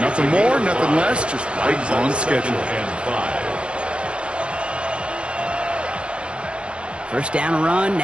Nothing more, nothing less, just right on schedule. 1st down run,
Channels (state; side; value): late; left; 0.058 ms